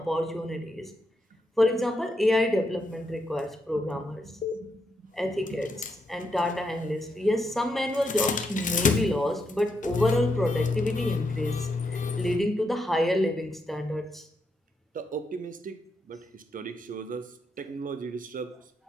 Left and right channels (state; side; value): normal; both; correlation 0.81